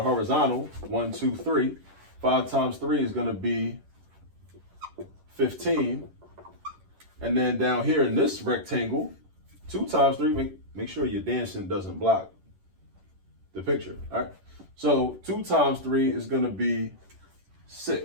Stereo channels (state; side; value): late; left; 11 ms